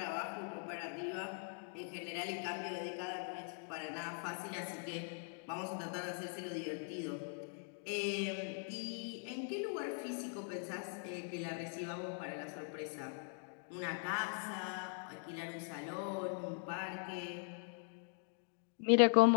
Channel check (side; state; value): right; silent; 50 dB below the other